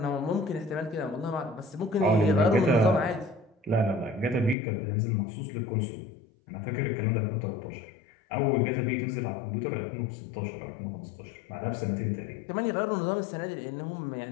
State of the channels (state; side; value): drops out; right; at 4.5 s